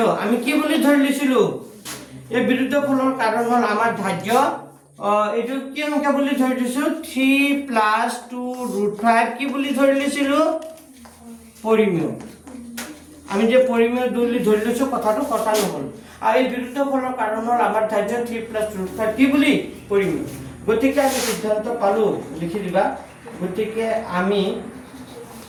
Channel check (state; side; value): identical; both; correlation 1.00